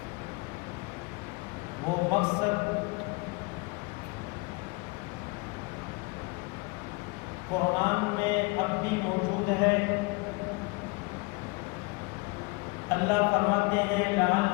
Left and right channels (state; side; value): quieter; right; 27.4 dB